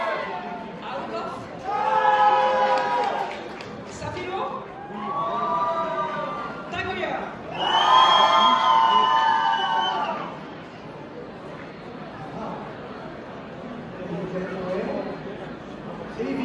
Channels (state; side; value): identical; both; correlation 1.00